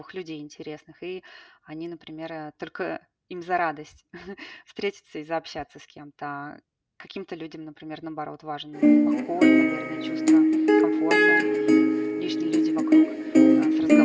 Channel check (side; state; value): both; identical; correlation 1.00